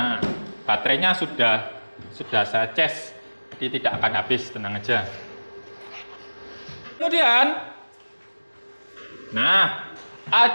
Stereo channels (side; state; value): both; inverted; correlation -1.00